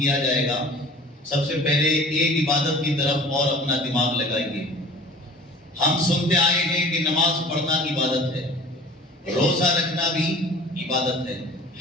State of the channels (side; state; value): both; normal; correlation 0.45